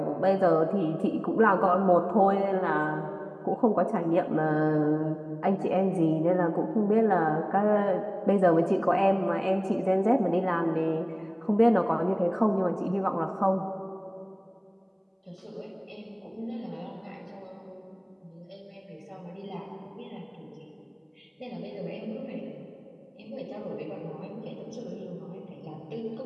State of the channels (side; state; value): both; identical; correlation 1.00